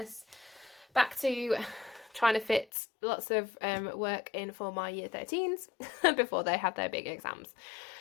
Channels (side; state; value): right; drops out; at 2.7 s